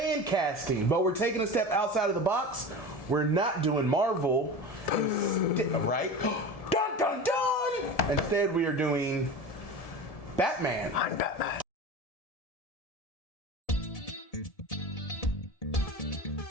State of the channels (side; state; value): right; late; 1.7 ms